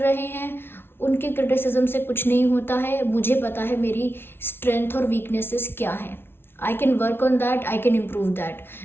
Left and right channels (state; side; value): late; right; 0.11 ms